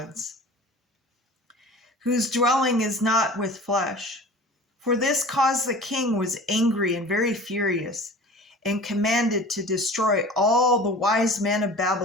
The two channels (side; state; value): both; normal; correlation 0.41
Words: whose dwelling is not with flesh. For this cause the king was angry and very furious, and commanded to destroy all the wise men of